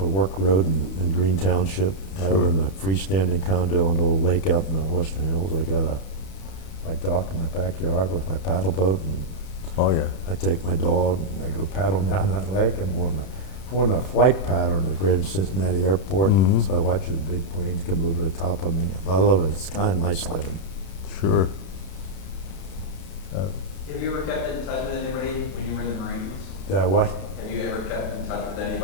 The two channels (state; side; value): late; right; 31 ms